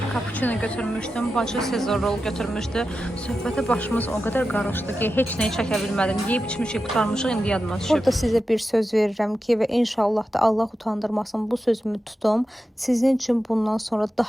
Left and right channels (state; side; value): normal; both; correlation 0.91